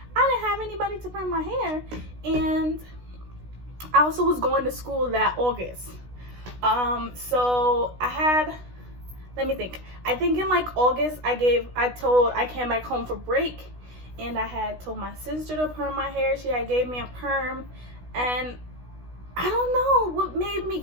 I didn't have anybody to perm my hair, and I also was going to school that August. So I had, let me think. I think in like August, I came back home for break, and I had told my sister to perm my hair. She had gave me a perm, and I don't know what made me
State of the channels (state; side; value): late; left; 16 ms